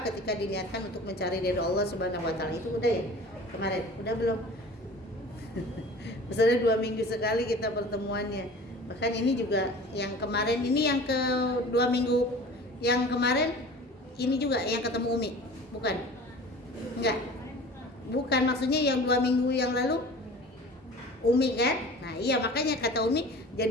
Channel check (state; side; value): normal; both; correlation 0.42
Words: ketika diniatkan untuk mencari ridho Allah Subhanahu wa taala. Itu udah ya? Kemarin udah belum? Misalnya 2 minggu sekali kita pertemuannya. Bahkan ini juga yang kemarin ini yang ke 2 minggu yang kemarin ini juga yang ketemu Umi. Bukan? Enggak. Bukan, maksudnya yang 2 minggu yang lalu Umi kan? Nah iya, makanya kata Umi,